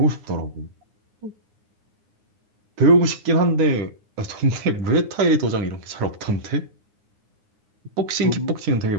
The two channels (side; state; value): left; late; 9.7 ms